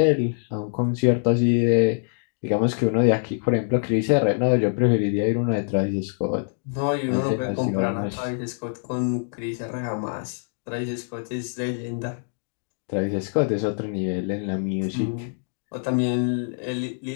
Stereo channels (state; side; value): silent; right; digital silence